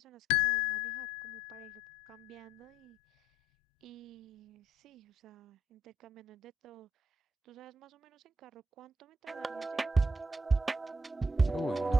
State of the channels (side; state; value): both; normal; correlation 0.69